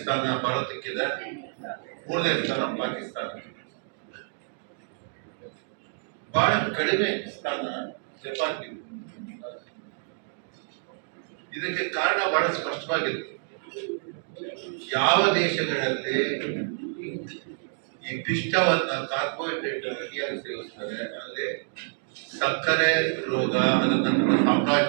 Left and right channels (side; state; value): left; silent; digital silence